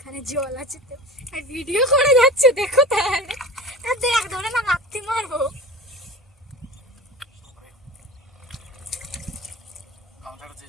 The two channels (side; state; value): both; normal; correlation 0.34